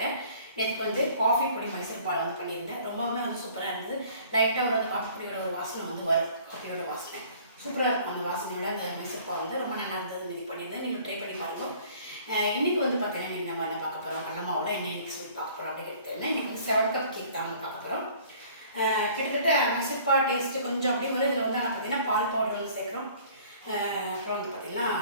நேற்றுக்கு வந்து காஃபி பொடி மைசூர் பால் வந்து பண்ணியிருந்தேன். ரொம்பவுமே வந்து சூப்பராக இருந்தது. லைட்டாக ஒரு காஃபி பொடியோட ஒரு வாசனை வந்து வரும். காஃபியோட வாசனை சூப்பராக இருக்கும். அந்த வாசனையோட அந்த மைசூர் பால் வந்து ரொம்ப நல்லா இருந்தது. இது பண்ணியிருந்தேன். நீங்கள் ட்ரை பண்ணி பாருங்கள். இன்றைக்கி வந்து பார்த்தீங்கன்னா இன்றைக்கி நம்ம என்ன பார்க்க போகிறோம், கடலமாவோட என்ன இன்றைக்கி சொல்லி பார்க்க போகிறோம் அப்படின்னு கேட்டேன்னா, இன்றைக்கி வந்து 7 கப் கேக் தான் வந்து பார்க்க போகிறோம். கிட்டத்தட்ட மைசூர் பால் டேஸ்ட்டு கொஞ்சம் அப்படிங்கிறது இதில் வந்து ஆனால் பார்த்தீங்கன்னா பால் பவுடர் வந்து சேர்க்குறோம். அப்புறம் வந்து பார்த்திங்கன்னா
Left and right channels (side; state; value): both; inverted; correlation -0.52